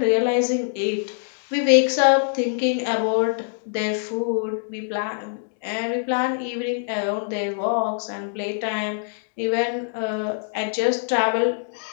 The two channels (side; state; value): right; silent; digital silence